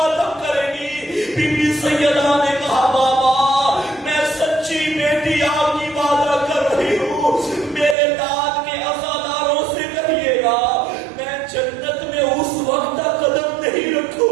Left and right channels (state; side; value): drops out; left; at 8.0 s